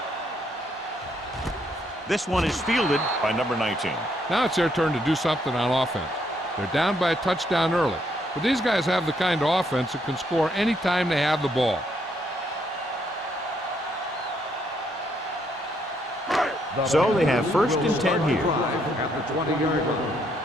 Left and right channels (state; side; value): normal; both; correlation 0.73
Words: This one is fielded by number 19. Now it's their turn to do something on offense. They're down by a touchdown early, but these guys have the kind of offense that can score any time they have the ball. So they have first and 10 here. At the 20-yard